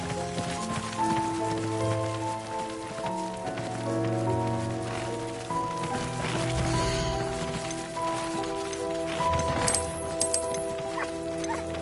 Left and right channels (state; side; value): identical; both; correlation 1.00